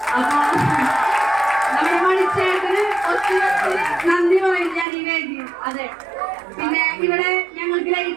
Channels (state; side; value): drops out; left; at 4.9 s